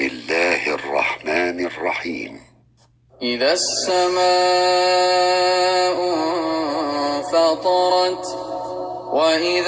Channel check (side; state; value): both; identical; correlation 1.00